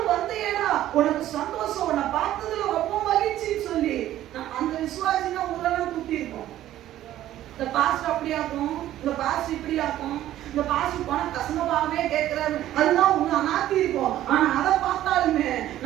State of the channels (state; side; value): quieter; left; 13.2 dB